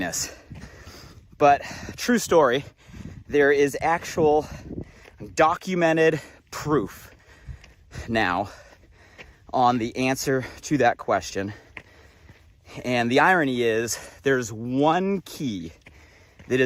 But true story, there is actual documented proof now on the answer to that question. And the irony is there's one key that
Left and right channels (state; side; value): identical; both; correlation 1.00